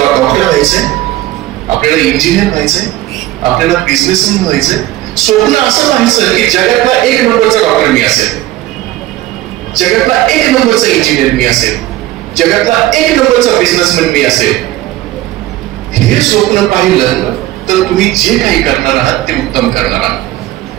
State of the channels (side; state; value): left; quieter; 15.9 dB